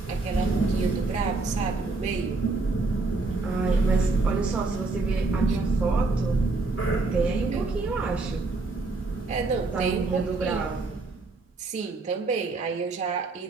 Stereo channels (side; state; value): left; quieter; 3.5 dB